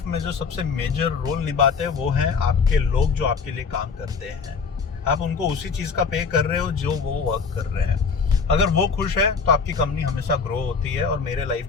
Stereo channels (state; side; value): quieter; right; 5.4 dB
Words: में जो सबसे मेजर रोल निभाते हैं वो हैं आपके लोग जो आपके लिए काम करते हैं। आप उनको उसी चीज़ का पे कर रहे हो जो वो वर्क कर रहे हैं। अगर वो खुश है तो आपकी कंपनी हमेशा ग्रो होती है, और मेरे लाइफ